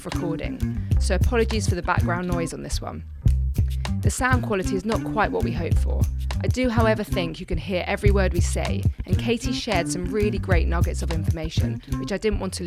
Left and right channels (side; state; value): both; identical; correlation 1.00